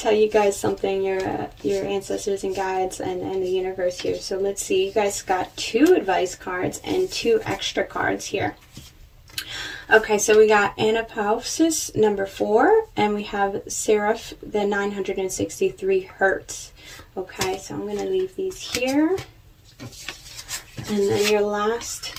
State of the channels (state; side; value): identical; both; correlation 1.00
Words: you guys something, your ancestors and guides and the universe here. So let's see, you guys got 2 advice cards and 2 extra cards here. Okay, so we got Anapausis number 4, and we have Seraph the 963 Hertz. Okay, so I'm going to leave these here. And then your last,